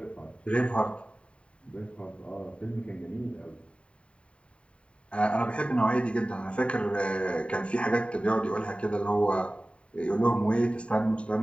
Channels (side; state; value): right; late; 0.060 ms